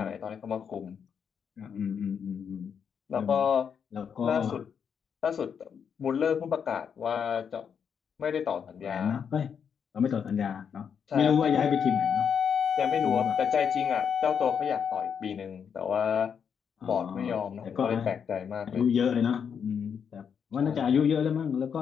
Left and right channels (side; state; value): right; quieter; 7.2 dB